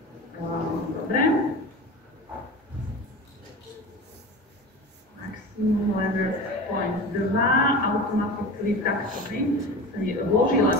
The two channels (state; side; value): normal; both; correlation 0.32